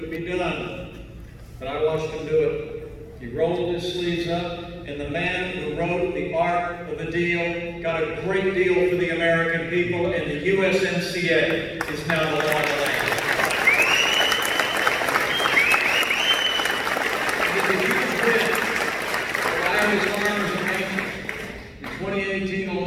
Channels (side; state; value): both; identical; correlation 1.00